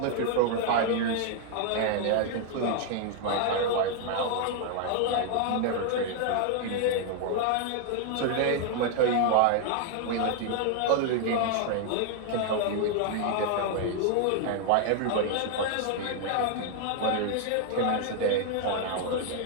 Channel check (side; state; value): both; different; correlation 0.00